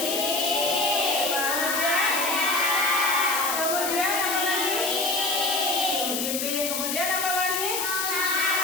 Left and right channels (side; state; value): left; noise; hiss, 1 dB below the sound